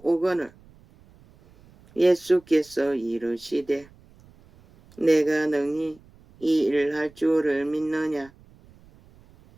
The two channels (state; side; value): noise; right; rumble, 27 dB below the sound